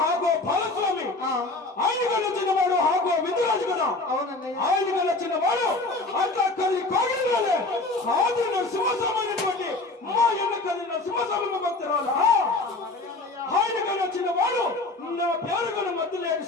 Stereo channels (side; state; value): right; quieter; 3.2 dB